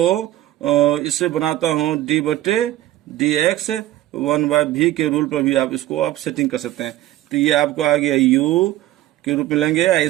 इससे बनाता हूँ d/dx 1/v के रूल पर भी आप इसको आप सेटिंग कर सकते हैं। तो ये आपको आ गया u के रूप में लेंगे, या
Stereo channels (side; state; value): left; quieter; 14.8 dB